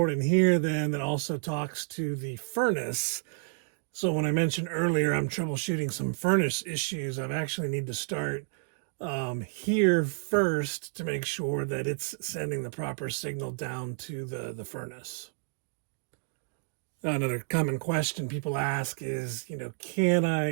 in here then that also talks to the furnace. So when I mentioned earlier I'm troubleshooting some furnace issues, I actually need to start here first to make sure that it's sending the proper signal down to the furnace. Another common question people ask is, can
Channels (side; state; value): left; silent; digital silence